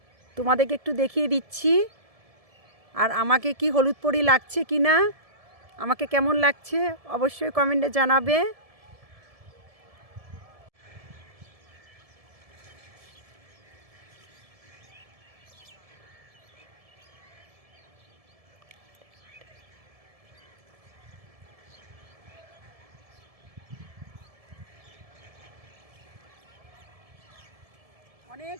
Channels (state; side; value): late; left; 1.7 ms